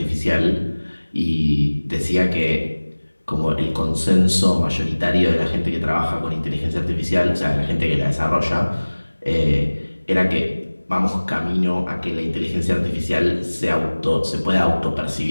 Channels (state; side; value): inverted; both; correlation -1.00